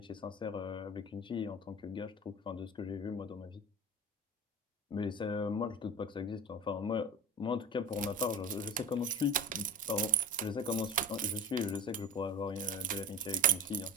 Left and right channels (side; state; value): both; normal; correlation 0.35